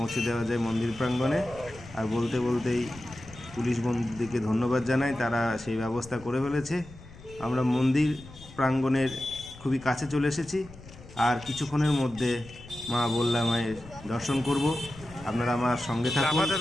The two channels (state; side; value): noise; left; rumble, 18 dB below the sound